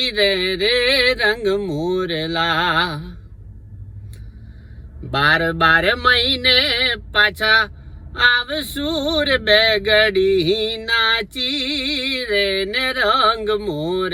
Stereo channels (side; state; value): both; identical; correlation 1.00